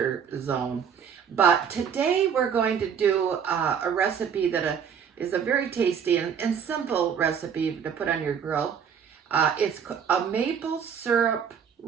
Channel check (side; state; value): left; quieter; 7.5 dB